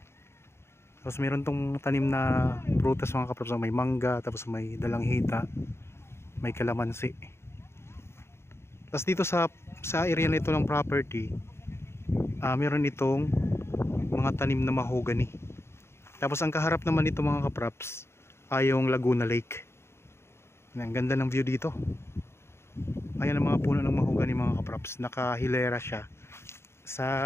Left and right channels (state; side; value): late; right; 0.12 ms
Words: Tapos mayroon tong tanim na prutas mga kapraps. May mangga, tapos may dalanghita, may kalamansi. Tapos dito sa area na ito ng property, meron itong mga tanim na mahogany. Tapos ang kaharap naman nito mga kapraps ay yung Laguna Lake. Ang ganda ng view dito. Ayan ang mga puno ng mahogany mga kapraps. Nakahilera siya